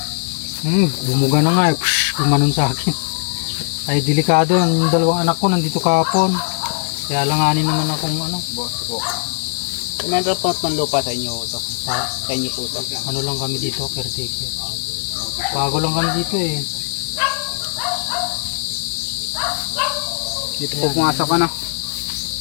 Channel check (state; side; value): silent; right; digital silence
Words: Bumuga na nga gumanon sa akin. Ay delikado, yung dalawang anak ko nandito kahapon. Kaya langanin naman akong Boss po. Kumanda po ng lupa sa inyo ito. Sa inyo po ito. Ano lang kami dito, caretaker. Bago lang kami dito Dito po pumasok ka na.